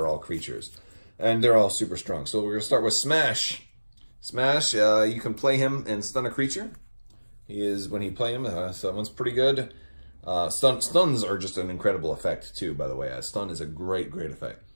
all creatures, and they're all super strong. So we're gonna start with Smash. Smash, you can play him and stun a creature. When you play him, so that one's pretty good. Stuns are just an incredible effect too, by the way. Stun is a great effect.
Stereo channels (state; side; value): inverted; both; correlation -1.00